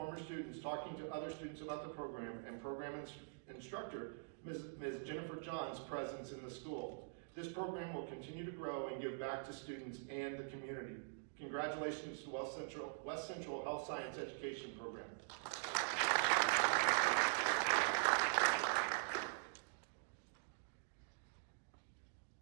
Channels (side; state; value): left; silent; digital silence